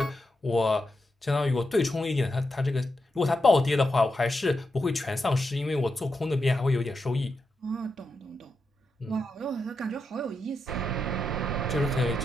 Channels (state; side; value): normal; both; correlation 0.86